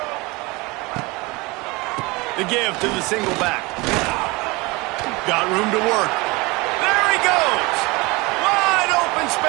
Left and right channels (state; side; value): quieter; left; 24.4 dB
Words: The give to the single back. Got room to work. There he goes. Wide open